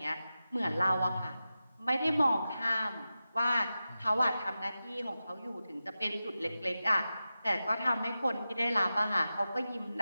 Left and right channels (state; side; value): inverted; both; correlation -0.93